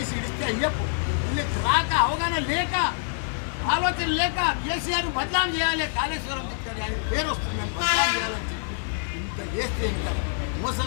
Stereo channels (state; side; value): silent; right; 61 dB below the other